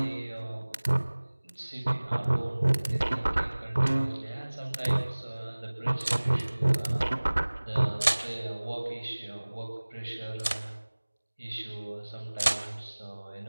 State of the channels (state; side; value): inverted; both; correlation -1.00